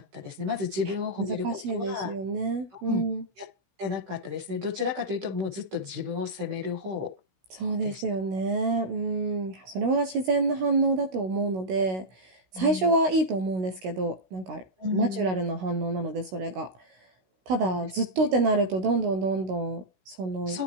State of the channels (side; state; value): left; late; 16 ms